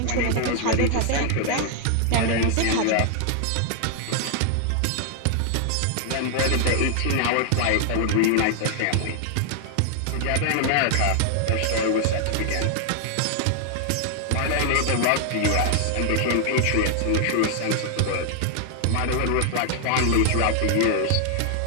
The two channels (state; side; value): different; both; correlation 0.00